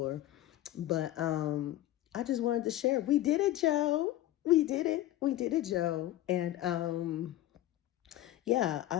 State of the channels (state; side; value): quieter; right; 14.5 dB